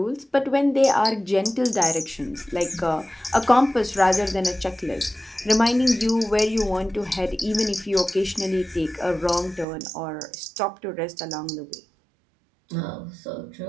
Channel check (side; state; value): left; drops out; at 9.7 s